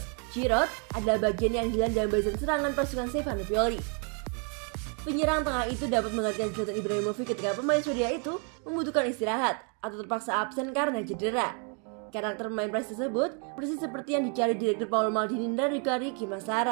Giroud adalah bagian yang hilang dalam barisan serangan pasukan Stefano Pioli. Penyerang tengah itu dapat menggantikan Zlatan Ibrahimovic ketika pemain Swedia itu membutuhkan istirahat atau terpaksa absen karena cedera. Karakter pemain Prancis tersebut persis seperti yang dicari direktur Paolo Maldini dan Riccardo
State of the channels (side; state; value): left; quieter; 39.5 dB